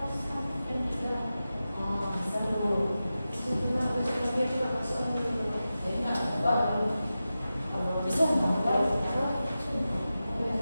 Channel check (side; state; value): both; inverted; correlation -0.93